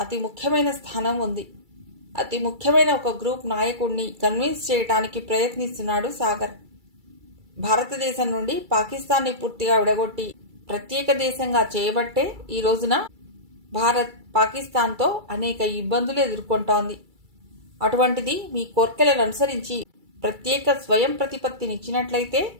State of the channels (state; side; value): late; left; 2.3 ms